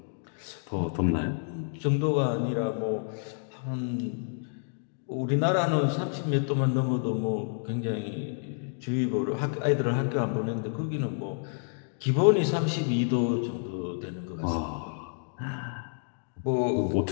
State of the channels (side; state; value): right; silent; digital silence